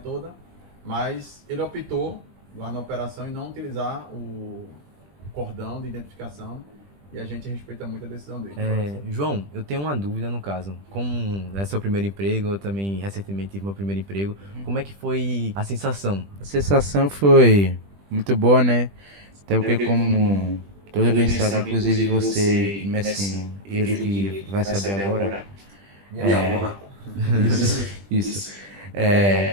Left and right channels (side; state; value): left; late; 20 ms